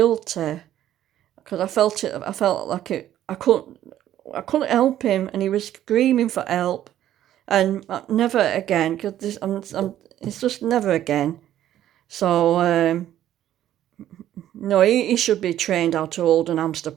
because I felt like I couldn't help him, and he was screaming for help. And never again, because it's just never again. So, no, he should be trained how to hold an hamster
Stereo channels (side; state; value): left; quieter; 12.1 dB